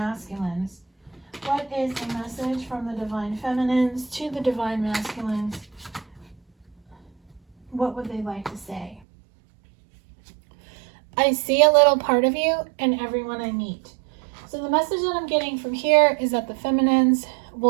What is the message from the divine feminines to the divine masculines? What would they like to say? I see a little part of you in everyone I meet. So the message that I'm getting from here is that the feminines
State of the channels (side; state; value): left; drops out; at 9.0 s